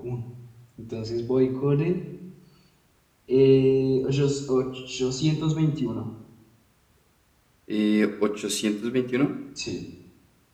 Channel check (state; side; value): identical; both; correlation 1.00